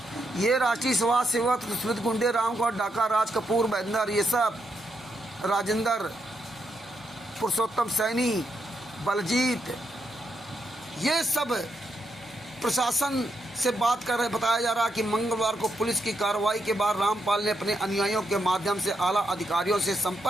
ये राष्ट्रीय समाज सेवा समिति गुंडे, रामकुमार डाका, राज कपूर, महेंद्र, ये सब, राजेंद्र, पुरुषोत्तम सैनी, बलजीत, ये सब प्रशासन से बात कर रहे। बताया जा रहा कि मंगलवार को पुलिस की कार्रवाई के बाद रामपाल ने अपने अनुयायियों के माध्यम से आला अधिकारियों से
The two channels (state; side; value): normal; both; correlation 0.80